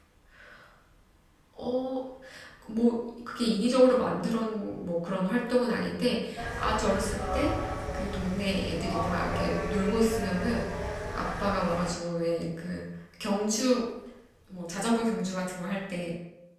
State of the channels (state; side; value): identical; both; correlation 1.00